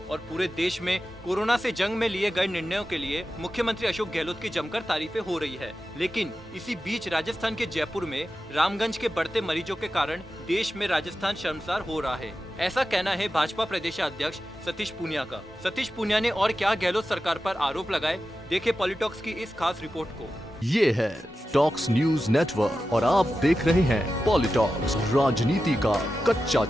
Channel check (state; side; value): normal; both; correlation 0.92